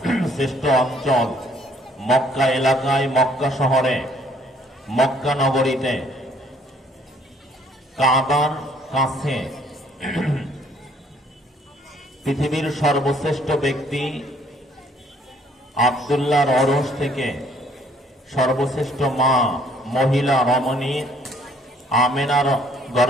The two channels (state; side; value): normal; both; correlation 0.62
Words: শ্রেষ্ঠ অঞ্চল মক্কা এলাকায়, মক্কা শহরে, মক্কা নগরীতে কাবার কাছে পৃথিবীর সর্বশ্রেষ্ঠ ব্যক্তি আব্দুল্লাহর অরশ থেকে সর্বশ্রেষ্ঠ মা মহিলা রমণী আমেনার